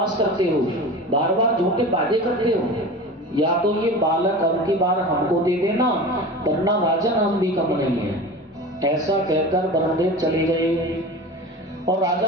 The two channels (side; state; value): both; normal; correlation 0.33